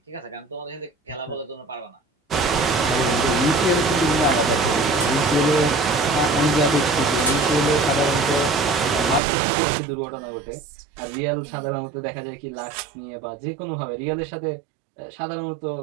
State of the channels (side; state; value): left; drops out; at 9.2 s